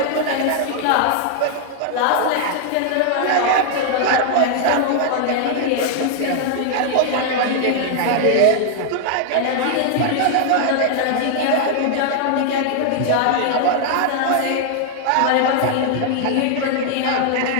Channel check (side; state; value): both; different; correlation 0.00